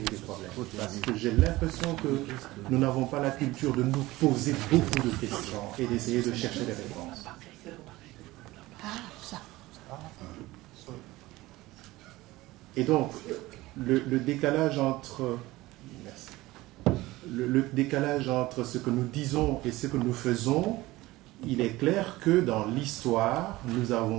problèmes. Parce que j'ai l'impression que nous n'avons pas la culture de nous poser beaucoup de questions et d'essayer de chercher des réponses. Et donc, le décalage entre... Merci. Le décalage entre ce que nous disons et ce que nous faisons, il est clair que dans l'histoire, nous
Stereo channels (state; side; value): quieter; left; 18.8 dB